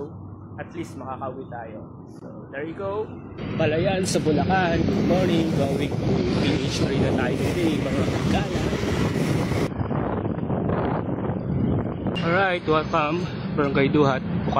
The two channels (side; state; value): both; identical; correlation 1.00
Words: At least makakauwi tayo. So, there you go. Balayan sa Bulacan. Good morning. Going to PH Arena tayo today, mga kagala. Alright, welcome. Barangay Duhat,